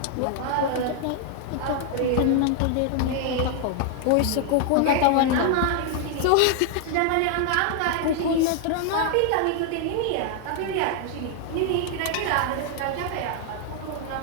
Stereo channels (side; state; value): both; different; correlation 0.00